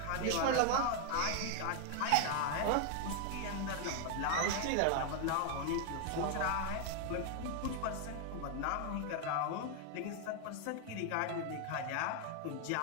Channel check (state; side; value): different; both; correlation 0.01